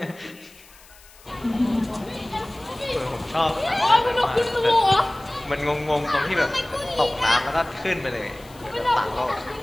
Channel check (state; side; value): noise; left; hiss, 24 dB below the sound